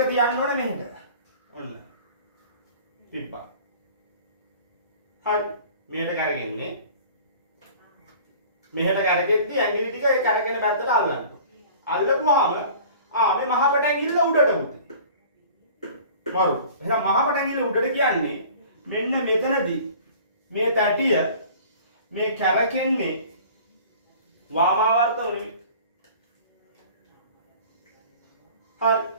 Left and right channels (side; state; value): both; inverted; correlation -0.46